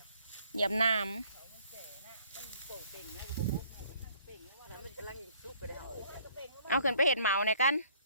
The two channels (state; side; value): inverted; both; correlation -0.59